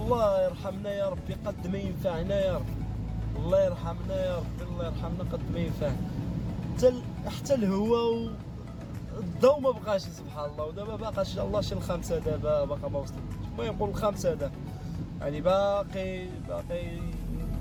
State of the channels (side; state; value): both; identical; correlation 1.00